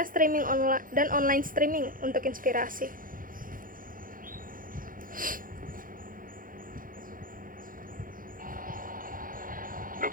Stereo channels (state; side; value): late; left; 0.40 ms